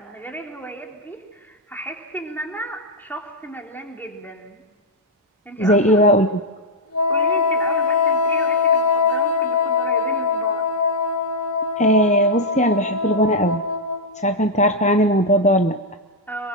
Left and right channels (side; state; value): both; normal; correlation -0.02